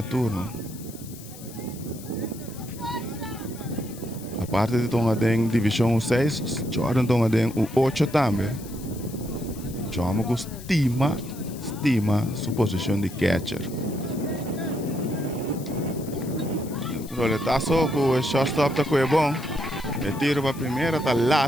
turno. A parte de tomar em divisão 6, Jordan toma em 8 também. Chama com estima sua posição de catcher. Roletazo com o shortstop tá é bom. E tiro para a primeira tá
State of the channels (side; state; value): left; noise; hiss, 17 dB below the sound